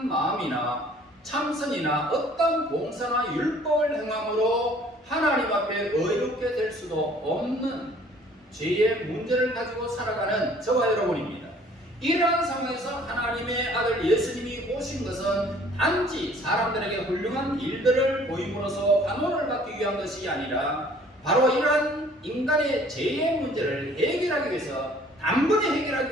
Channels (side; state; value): both; normal; correlation 0.55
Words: 마음이나 참선이나 어떤 봉사나 율법을 행함으로 하나님 앞에 의롭게 될 수도 없는 죄의 문제를 가지고 살아가는 저와 여러분입니다. 이러한 상황에서 하나님의 아들 예수님이 오신 것은 단지 사람들에게 훌륭한 일들을 보임으로써 환호를 받기 위한 것이 아니라 바로 이러한 인간의 죄의 문제를 해결하기 위해서, 단번에